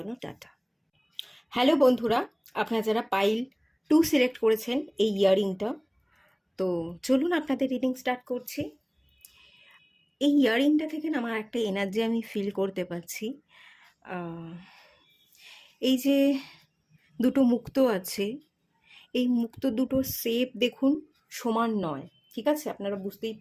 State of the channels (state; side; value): identical; both; correlation 1.00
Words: টাটা। হ্যালো বন্ধুরা, আপনারা যারা পাইল 2 সিলেক্ট করেছেন এই ইয়াররিংটা, তো চলুন আপনাদের রিডিং স্টার্ট করছি। এই ইয়ারিংটা থেকে না আমার একটা এনার্জি আমি ফিল করতে পারছি। আহ, এই যে দুটো মুক্ত আছে, এই মুক্ত দুটোর শেপ দেখুন সমান নয়, ঠিক আছে? আপনারা বুঝতেই